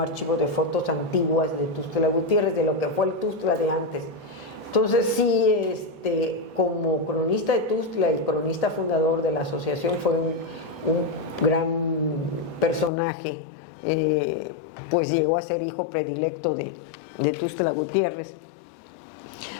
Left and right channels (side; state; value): right; drops out; at 12.9 s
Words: de fotos antiguas de Tuxtla Gutiérrez, de lo que fue el Tuxtla de antes. Entonces sí, como cronista de Tuxtla y cronista fundador de la asociación, fue un gran personaje, pues llegó a ser hijo predilecto de Tuxtla Gutiérrez.